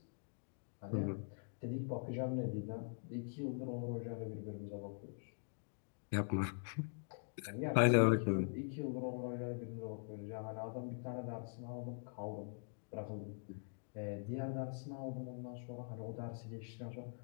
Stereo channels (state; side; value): silent; right; digital silence